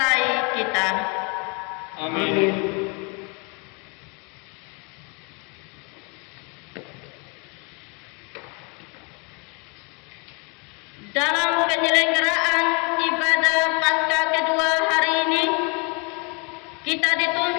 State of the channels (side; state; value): right; quieter; 32.7 dB